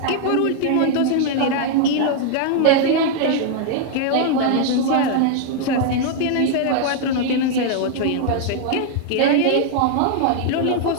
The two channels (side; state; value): both; different; correlation 0.00